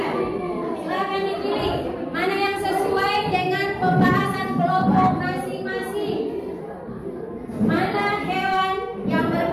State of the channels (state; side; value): identical; both; correlation 1.00